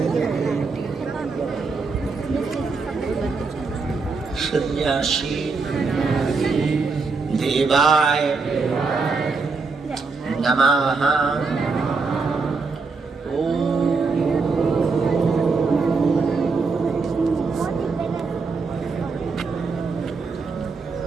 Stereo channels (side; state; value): left; quieter; 4.4 dB